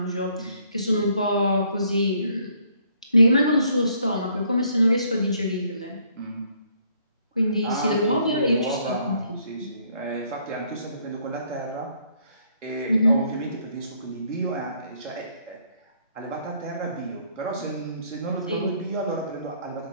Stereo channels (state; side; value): inverted; both; correlation -0.66